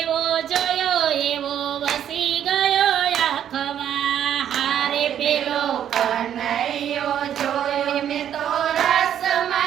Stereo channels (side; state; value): left; quieter; 9.9 dB